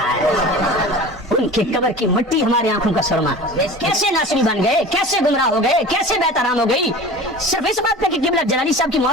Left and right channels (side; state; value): both; normal; correlation 0.38